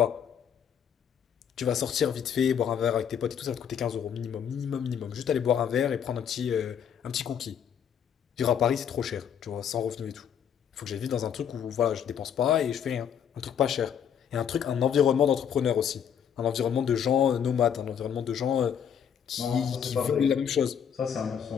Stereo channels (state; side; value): quieter; right; 8.3 dB